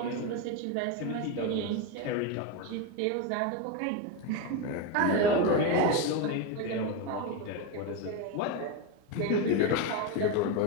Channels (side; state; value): both; different; correlation 0.03